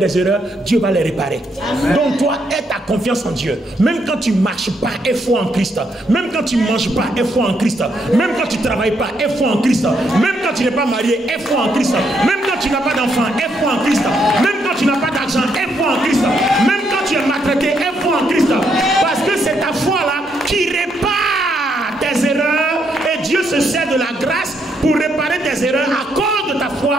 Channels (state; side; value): normal; both; correlation 0.76